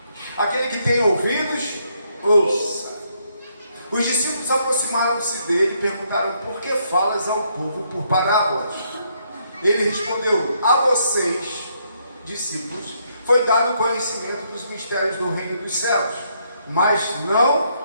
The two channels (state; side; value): inverted; both; correlation -0.73